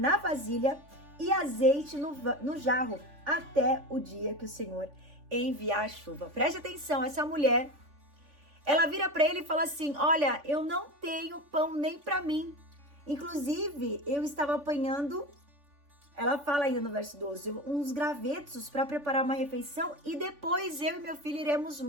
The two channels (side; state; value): left; late; 3.5 ms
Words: vasilha e azeite no jarro, até o dia que o Senhor enviar a chuva. Preste atenção, essa mulher, ela vira para ele e fala assim: olha, eu não tenho pão nem para mim. Inclusive, eu estava apanhando, ela fala ainda no verso 12, uns gravetos para preparar uma refeição e depois eu e meu filho iremos